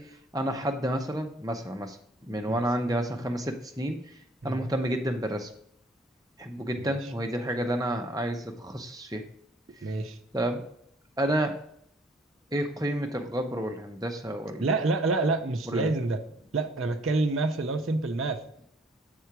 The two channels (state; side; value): normal; both; correlation 0.61